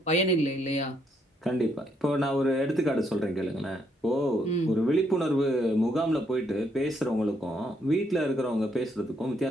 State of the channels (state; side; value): normal; both; correlation 0.73